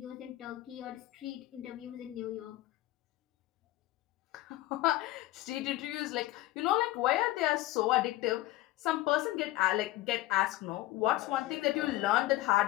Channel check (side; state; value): right; quieter; 16.7 dB